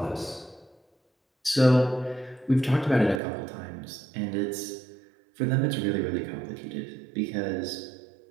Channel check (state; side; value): drops out; left; at 3.2 s